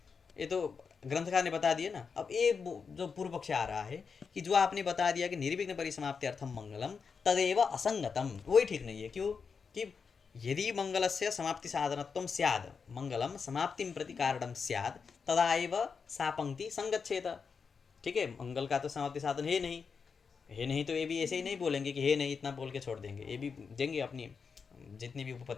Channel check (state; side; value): quieter; right; 5.6 dB